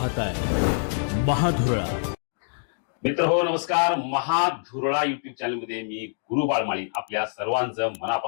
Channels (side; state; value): right; silent; digital silence